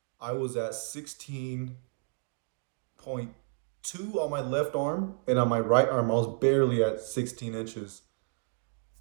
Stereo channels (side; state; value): left; silent; digital silence